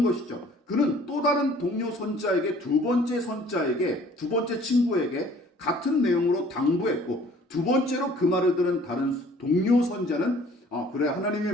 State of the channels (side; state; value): both; normal; correlation 0.54